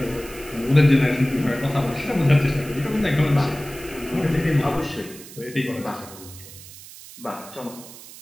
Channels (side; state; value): right; noise; hiss, 17 dB below the sound